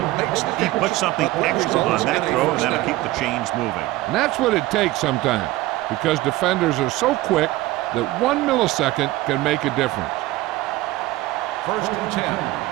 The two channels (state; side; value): quieter; left; 17.8 dB